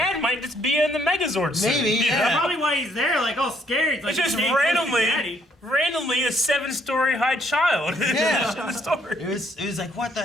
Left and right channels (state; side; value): normal; both; correlation 0.68